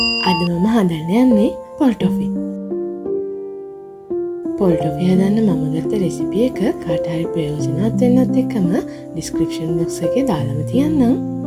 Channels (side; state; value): both; identical; correlation 1.00